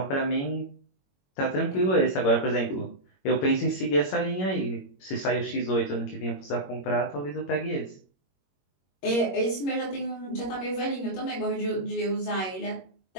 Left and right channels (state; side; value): late; right; 21 ms